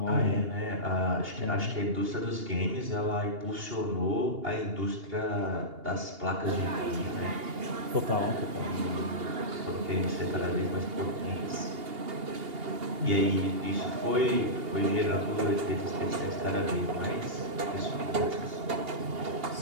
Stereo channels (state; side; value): late; left; 2.8 ms